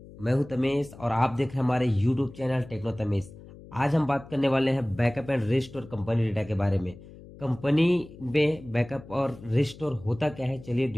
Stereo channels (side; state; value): left; noise; hum, 18 dB below the sound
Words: मैं हूं तमेश और आप देख रहे हैं हमारे यूट्यूब चैनल टेक्नो तमेश। आज हम बात करने वाले हैं backup and restore company data के बारे में। कंपनी में बैकअप और रिस्टोर होता क्या है, चलिए